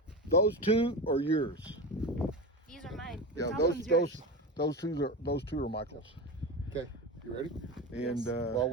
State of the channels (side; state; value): both; normal; correlation 0.23